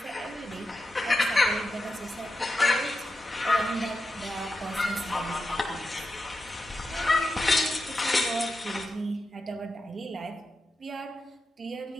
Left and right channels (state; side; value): normal; both; correlation 0.89